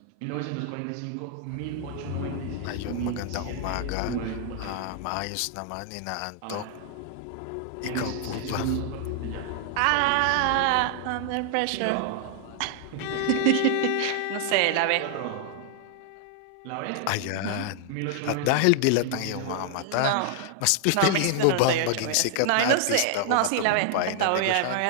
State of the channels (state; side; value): different; both; correlation 0.00